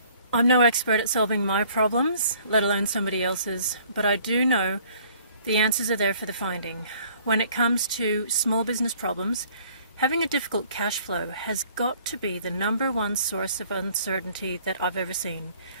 I'm no expert at solving my problems, let alone somebody else's, but I do know the answers are there for the finding. When it comes to small business problems, having a difficult cash flow has got to be the number one source of uncertainty that I've ever seen.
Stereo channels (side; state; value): both; inverted; correlation -0.57